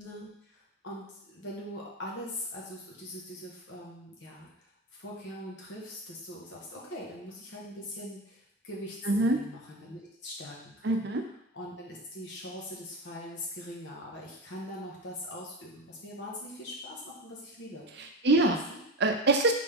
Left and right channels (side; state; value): both; normal; correlation 0.21